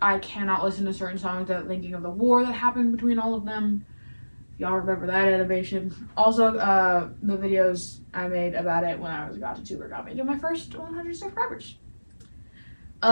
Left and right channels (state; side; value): inverted; both; correlation -1.00